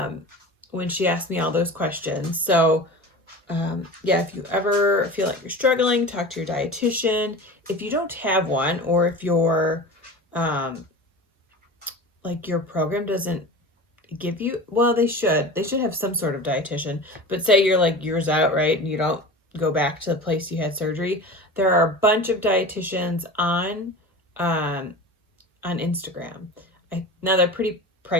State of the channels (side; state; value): both; normal; correlation 0.33